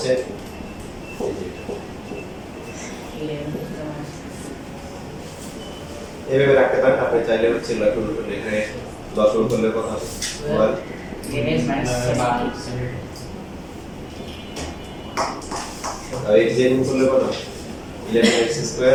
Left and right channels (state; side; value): identical; both; correlation 1.00